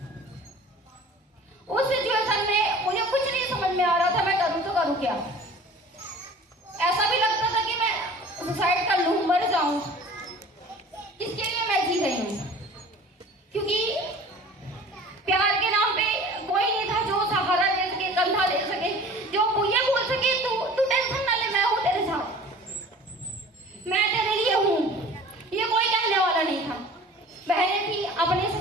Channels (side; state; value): both; normal; correlation 0.44